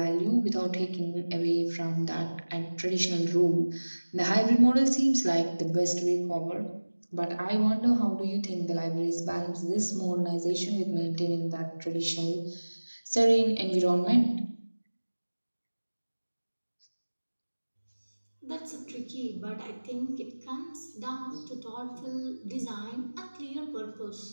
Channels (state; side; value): inverted; both; correlation -1.00